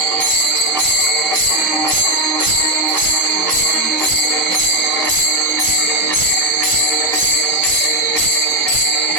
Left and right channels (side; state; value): both; normal; correlation 0.04